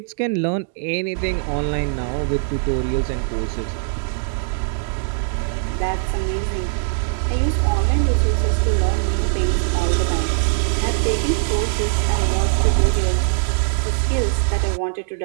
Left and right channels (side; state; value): left; silent; digital silence